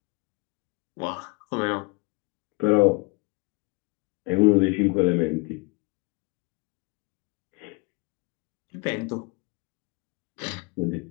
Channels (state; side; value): quieter; right; 28.8 dB